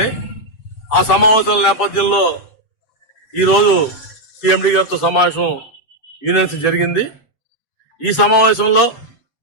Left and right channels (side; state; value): right; late; 7.8 ms